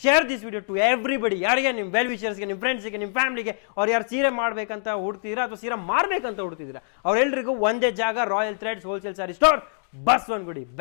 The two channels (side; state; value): right; silent; digital silence